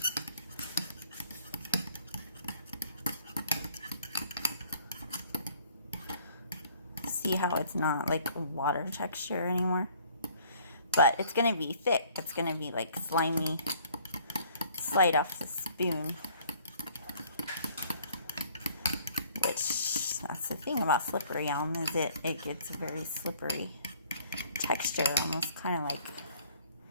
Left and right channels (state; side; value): inverted; both; correlation -0.57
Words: See how it's not like water texture anymore, but it's gonna be thick. It's gonna be like slimy, slide off the spoon, which that's the thing about Slippery Elm, is it gets a very slippery texture, almost kind of like